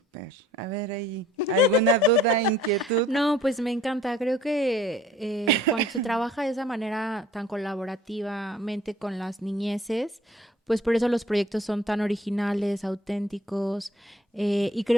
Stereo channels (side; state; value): both; normal; correlation 0.54